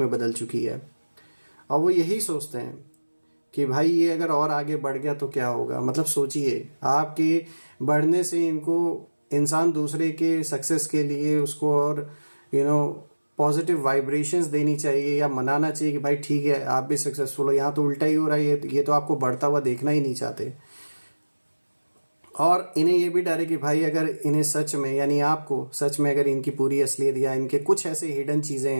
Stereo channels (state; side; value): inverted; both; correlation -1.00